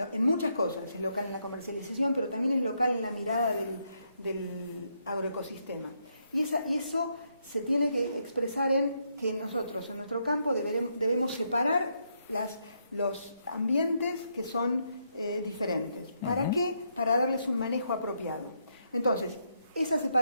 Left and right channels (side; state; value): both; inverted; correlation -0.77